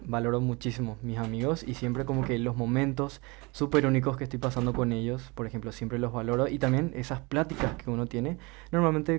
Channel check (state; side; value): quieter; left; 26.7 dB